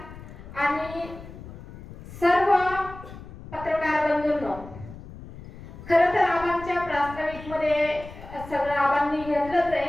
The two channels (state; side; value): noise; left; rumble, 15 dB below the sound